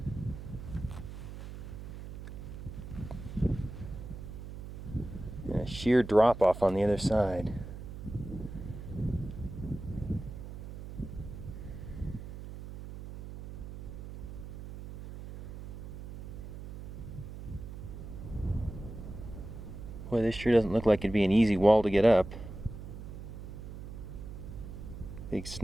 And a sheer drop off on the other side. Boy, this sure doesn't look like it'd be an easy wall to get up. Big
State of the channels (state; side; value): noise; right; hum, 10 dB below the sound